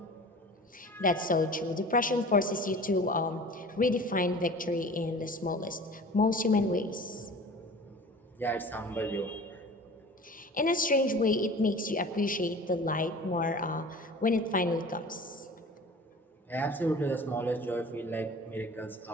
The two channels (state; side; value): normal; both; correlation 0.41